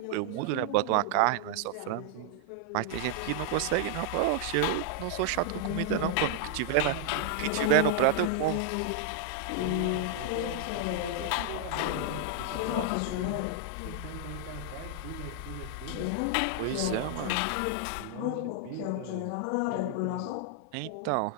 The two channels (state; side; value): different; both; correlation 0.00